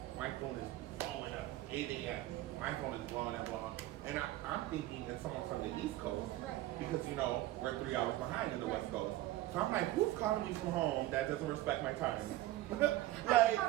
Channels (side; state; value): left; quieter; 15.9 dB